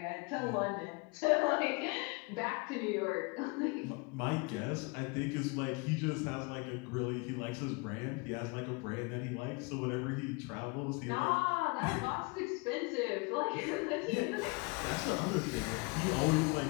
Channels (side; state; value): right; quieter; 28.9 dB